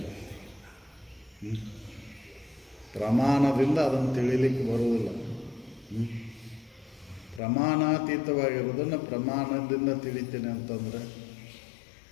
ಪ್ರಮಾಣದಿಂದ ಅದನ್ನು ತಿಳಿಲಿಕ್ಕೆ ಬರುವುದಿಲ್ಲ ಪ್ರಮಾಣಾತೀತವಾಗಿರೋದನ್ನು ಪ್ರಮಾಣದಿಂದ ತಿಳಿತೀನಿ ಅಂತಂದರೆ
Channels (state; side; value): drops out; right; at 7.4 s